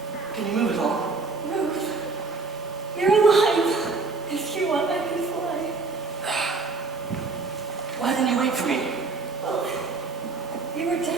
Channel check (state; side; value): quieter; left; 4.1 dB